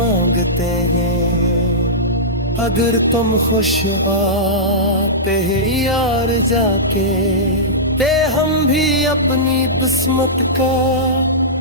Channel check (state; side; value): normal; both; correlation -0.16